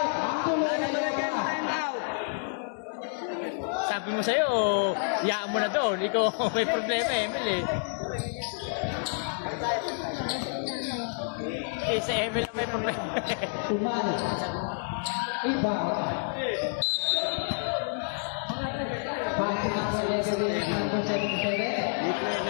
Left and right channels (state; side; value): silent; right; 59 dB below the other